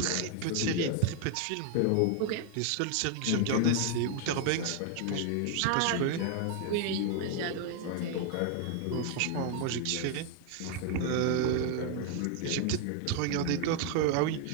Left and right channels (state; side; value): different; both; correlation 0.00